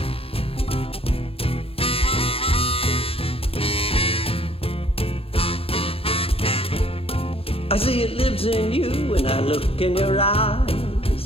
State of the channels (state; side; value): late; right; 0.27 ms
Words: I see it lives in you when I look in your